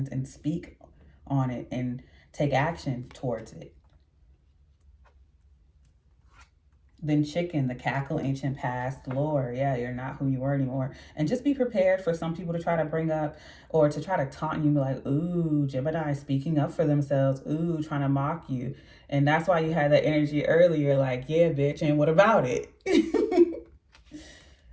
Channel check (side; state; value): both; identical; correlation 1.00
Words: and speak on it and take action towards it. Then Chicken, the cackle, ancient past, lore. Yeah, you're not who you were anymore. And just be prepared for some people to try to bring up or to try to taunt you and be like, ooh, Gemini speaking up for themselves. Ooh, trying to mock you. And that's why you had that energy earlier, like, yeah, bitch, and what about it?